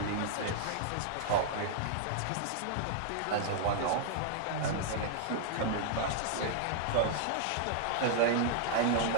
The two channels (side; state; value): both; different; correlation -0.01